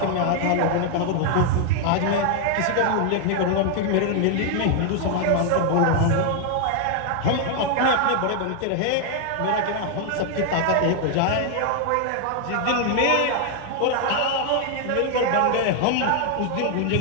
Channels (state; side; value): different; both; correlation 0.00